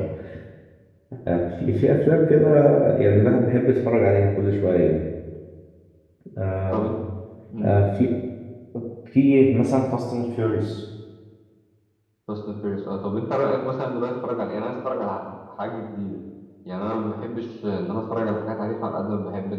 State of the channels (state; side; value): identical; both; correlation 1.00